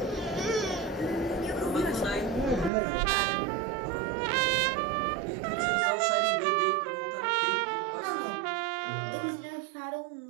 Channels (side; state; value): left; drops out; at 2.7 s